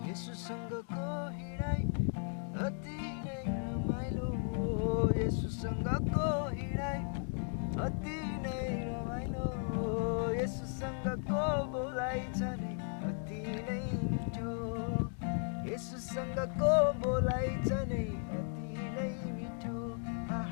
येशूसँगको हिँडाइ अति नै रमाइलो येशूसँगको हिँडाइ अति नै रमाइलो येशूसँगको बोलाइ छ नै अति नै मिठो येशूसँगको बोलाइ छ नै अति नै मिठो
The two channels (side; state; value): right; silent; 54 dB below the other